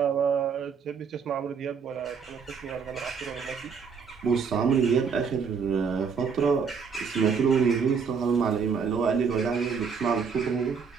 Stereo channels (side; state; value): left; quieter; 6.0 dB